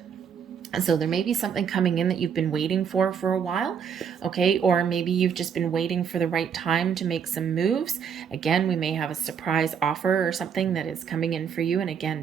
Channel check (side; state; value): left; quieter; 7.4 dB